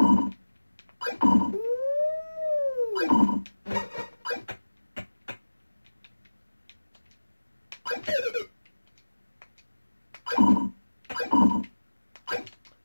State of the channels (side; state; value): both; inverted; correlation -1.00